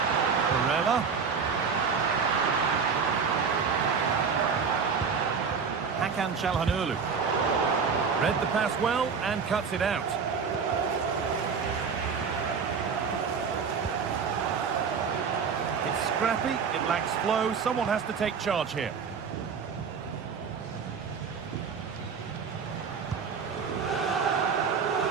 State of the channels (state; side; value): quieter; left; 5.9 dB